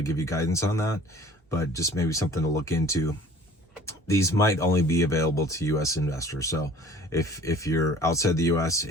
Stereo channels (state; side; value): normal; both; correlation 0.48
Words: give you guidance on that, but just maybe something to look into. These might only be available to US investors. So if you're outside the US